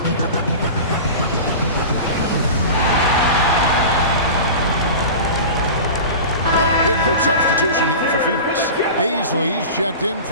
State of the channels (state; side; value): inverted; both; correlation -0.32